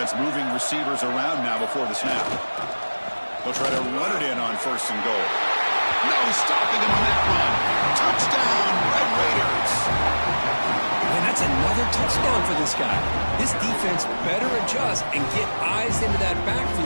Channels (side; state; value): both; inverted; correlation -1.00